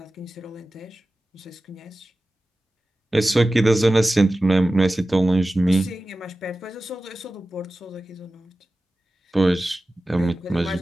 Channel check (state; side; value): normal; both; correlation 0.96